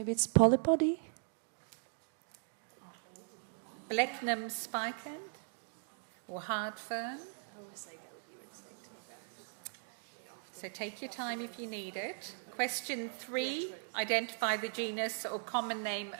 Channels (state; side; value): silent; left; digital silence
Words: it's polypody? Blechnum spicant or hard fern. I always say go with your instinct, to be fair. So take your time if you need it. Question 3. Identify the genus or common name